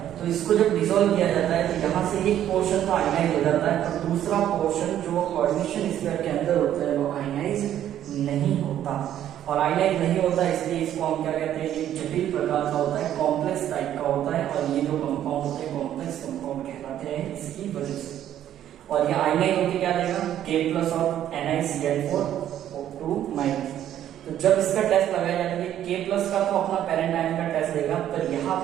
तो इसको जब डिसॉल्व किया जाता है तो यहाँ से एक पोर्शन तो आयनाइज हो जाता है, और दूसरा पोर्शन जो कोऑर्डिनेशन स्फीयर के अंदर होता है वो आयनाइज नहीं होता। और आयनाइज नहीं होता इसलिए इसको हम क्या कहते हैं, ये जटिल प्रकार का होता है, कॉम्प्लेक्स टाइप का होता है, और ये जो कंपाउंड होते हैं कॉम्प्लेक्स कंपाउंड कहलाते हैं इसकी वजह से। और ये आयनाइज होकर क्या देगा, K+ और NiCl4 O2-। तो जब इसका टेस्ट लगाया जाएगा K+ का तो अपना पेरेंट आयन का टेस्ट देगा, पर यहाँ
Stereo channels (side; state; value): left; quieter; 11.2 dB